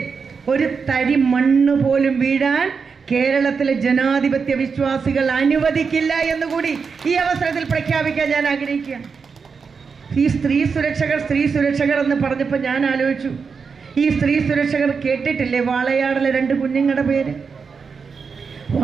ഒരു തരി മണ്ണ് പോലും വീഴാൻ കേരളത്തിലെ ജനാധിപത്യ വിശ്വാസികൾ അനുവദിക്കില്ല എന്നുകൂടി ഈ അവസരത്തിൽ പ്രഖ്യാപിക്കാൻ ഞാൻ ആഗ്രഹിക്കുകയാണ്. ഈ സ്ത്രീ സുരക്ഷകർ എന്ന് പറഞ്ഞപ്പോൾ ഞാൻ ആലോചിച്ചു, ഈ സ്ത്രീ സുരക്ഷകർ കേട്ടിട്ടില്ലേ വാളയാടിലെ 2 കുഞ്ഞുങ്ങളുടെ പേര്?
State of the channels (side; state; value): left; quieter; 5.5 dB